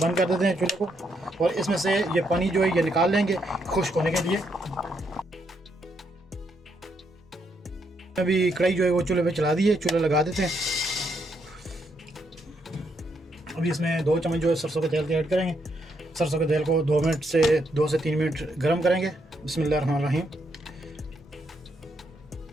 कर देते हैं चूल्हे को, और इसमें से ये पानी जो है ये निकाल लेंगे खुश्क होने के लिए। अभी कढ़ाई जो है वो चूल्हे पे चला दी है, चूल्हा लगा देते हैं। अभी इसमें 2 चम्मच जो है सरसों के तेल के ऐड करेंगे। सरसों के तेल को 2 से 3 मिनट गर्म करेंगे। बिस्मिल्लाहिर्रहमानिर्रहीम।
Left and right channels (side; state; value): both; normal; correlation 0.77